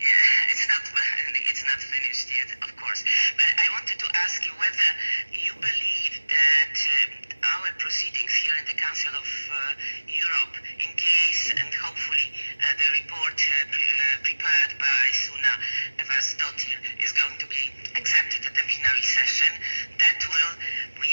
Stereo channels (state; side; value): inverted; both; correlation -1.00